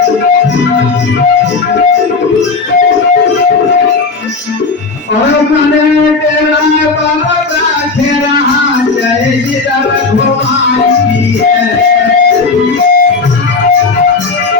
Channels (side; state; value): right; quieter; 4.2 dB